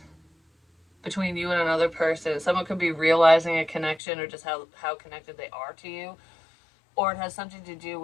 between you and another person. Someone could be realizing a connection or just how connected they are to you. Or it has something to do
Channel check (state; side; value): drops out; right; at 4.0 s